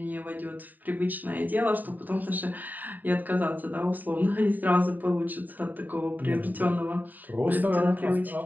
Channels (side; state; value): left; late; 0.086 ms